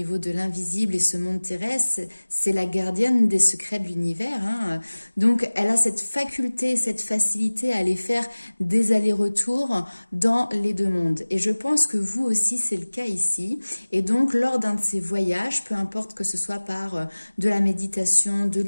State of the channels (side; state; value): both; inverted; correlation -1.00